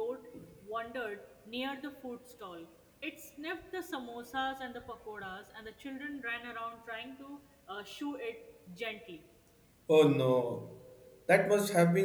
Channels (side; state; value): both; identical; correlation 1.00